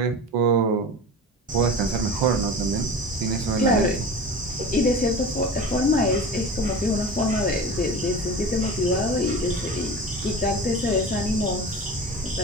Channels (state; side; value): normal; both; correlation 0.33